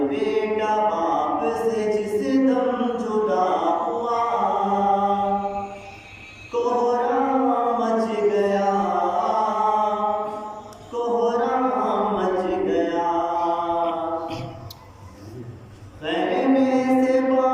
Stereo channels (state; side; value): identical; both; correlation 1.00